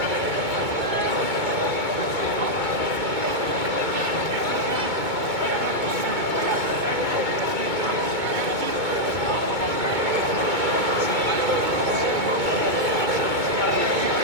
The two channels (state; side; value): late; left; 2.2 ms